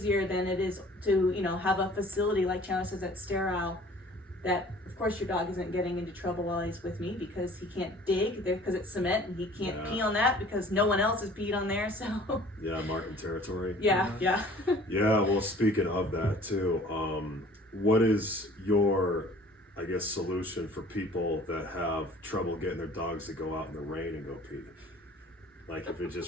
than it is to, have a facility like Chandler says that's sterile, that of course your dog isn't getting into trouble while he's with me because he can't dig because it's cement and he can't pee on that because no one else has peed on there. So yeah, marking territory. yeah. Yeah, well, speaking of that too, what is your, I guess, solution for people that have trouble getting their dogs to go out in the rain and go pee? Like if it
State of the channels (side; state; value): both; normal; correlation 0.50